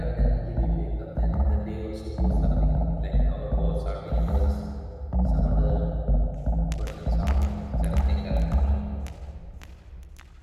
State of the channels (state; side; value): identical; both; correlation 1.00